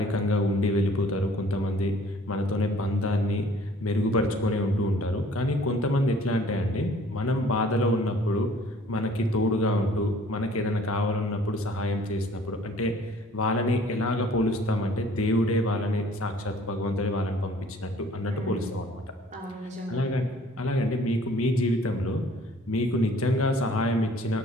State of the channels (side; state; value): both; normal; correlation 0.54